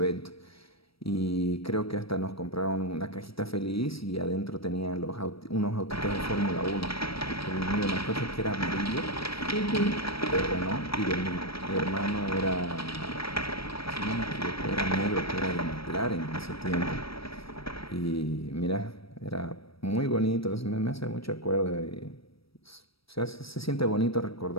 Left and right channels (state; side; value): late; right; 0.76 ms